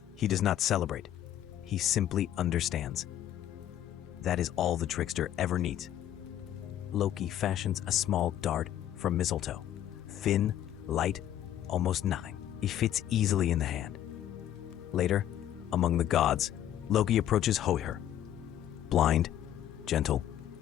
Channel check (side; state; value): right; quieter; 11.5 dB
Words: He does not celebrate. He simply understands. That is all the trickster ever needs. Loki fashions a small dart from mistletoe. Thin, light, almost nothing. It fits easily in the hand. Later, among the gods, Loki approaches Hoir. Blind, gentle,